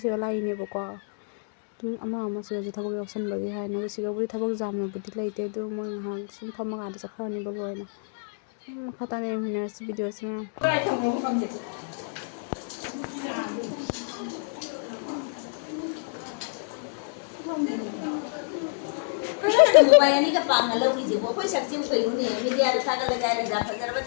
ꯁꯤꯗ ꯂꯥꯛꯏꯅꯦꯕꯀꯣ ꯑꯗꯨꯝ ꯑꯃ ꯁꯤꯗꯁꯨ ꯊꯕꯛ ꯌꯥꯎꯁꯟꯕꯒꯤ ꯍꯥꯏꯅ ꯁꯤꯗꯕꯨꯗꯤ ꯊꯕꯛ ꯌꯥꯝꯅꯕꯨꯗꯤ ꯂꯩꯇꯦ ꯑꯗꯨ ꯃꯣꯏ ꯉꯥꯏꯍꯥꯛ ꯁꯨꯝ ꯐꯝꯃꯀꯥꯟꯗ ꯆꯠꯈ꯭ꯔꯅꯤꯕ ꯂꯣꯏꯅ ꯃꯈꯥ ꯇꯥꯅ ꯌꯦꯡꯃꯤꯟꯅꯔꯁꯤ ꯚꯤꯗꯤꯑꯣꯁꯤ ꯃꯌꯥꯝ ꯃꯌꯥꯅꯤꯒ ꯄꯥꯡꯅ ꯂꯧꯔꯤꯁꯤꯕꯣ ꯑꯩꯈꯣꯏ ꯁꯛꯆꯤꯡ ꯀꯩꯅꯣꯅꯦ ꯃꯤꯗꯤꯌꯥꯗ ꯊꯥꯒꯠꯂꯒ ꯍꯥꯏꯔꯒ ꯐꯖꯔꯕ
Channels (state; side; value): silent; right; digital silence